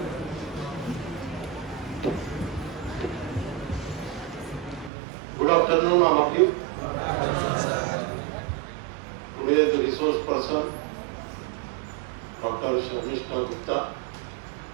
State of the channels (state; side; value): drops out; left; at 4.9 s